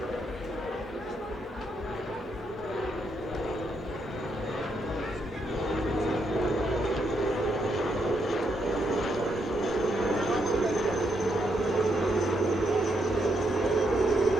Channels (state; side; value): normal; both; correlation 0.78